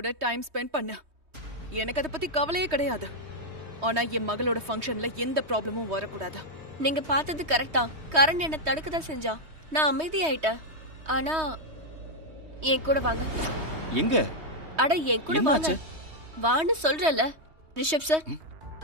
time spend பண்ண. எனக்கு அதை பத்தி கவலையே கிடையாது. ஆனா என் மகளோட ஃபங்க்ஷன்ல எந்த ப்ராப்ளமும் வரக்கூடாது. நீங்க பார்த்தது கரெக்டா. கரண் என்ன தடுக்கதான் செஞ்சா. நான் அமைதியாயிட்டேன். ஆனா என் கூட வாங்க. எங்க? அட என் கூட வாங்க. வான்னு சொல்றல ரிஷப் சார்.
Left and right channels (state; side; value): late; left; 3.2 ms